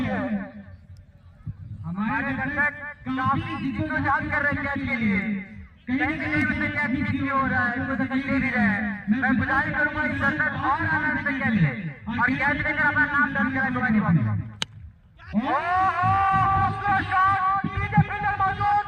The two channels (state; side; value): identical; both; correlation 1.00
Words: है। हमारे दर्शक काफी जिद्दोजहद कर रहे हैं कैच के लिए, कहीं कहीं से कैच नहीं हो रहा है, कोई तकलीफ नहीं रहा है। मैं गुजारिश करूंगा इस दर्शक और आनंद से कैच ले और कैच लेकर अपना नाम दर्ज कराए कबड्डी बात।